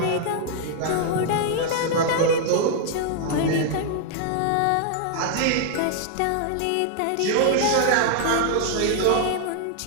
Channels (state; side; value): different; both; correlation 0.00